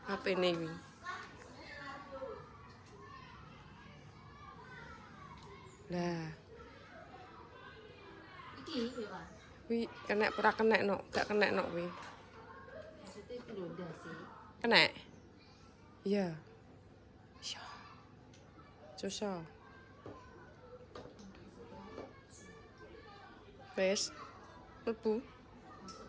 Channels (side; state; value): both; identical; correlation 1.00